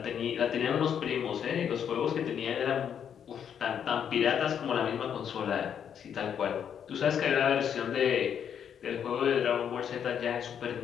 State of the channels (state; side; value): quieter; right; 8.4 dB